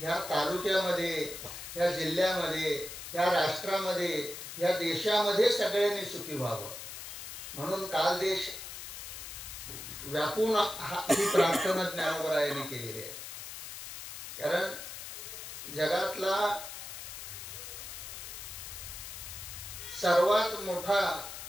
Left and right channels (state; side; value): noise; left; hiss, 10 dB below the sound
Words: तालुक्यामध्ये, ह्या जिल्ह्यामध्ये, ह्या राष्ट्रामध्ये, ह्या देशामध्ये सगळ्यांनी सुखी व्हावं म्हणून काल देश व्यापून ही प्रार्थना ज्ञानोबरायांनी केलेली आहे. कारण जगातला सर्वात मोठा